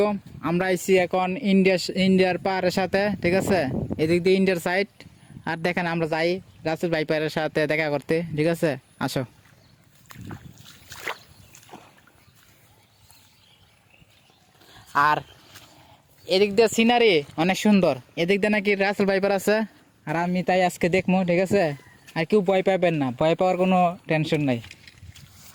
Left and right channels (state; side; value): identical; both; correlation 1.00